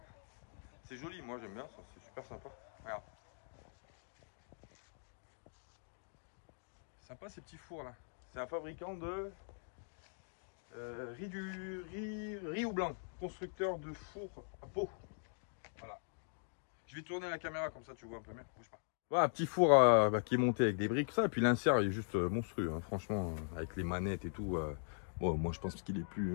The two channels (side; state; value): right; silent; digital silence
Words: C'est joli, moi j'aime bien ça, c'est super sympa. Regarde. Sympa ces petits fours là. C'est un fabricant de riz ou blanc. Constructeur de fours à peau. Voilà. Je vais tourner la caméra comme ça tu vois un peu mieux. Bouge pas. Voilà, un petit four qui est monté avec des briques, ça. Et puis l'insert il est juste monstrueux, hein. Franchement, avec les manettes et tout. Bon, moi je pense qu'il est